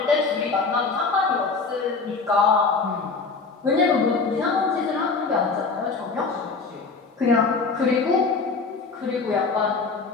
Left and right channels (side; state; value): right; quieter; 4.4 dB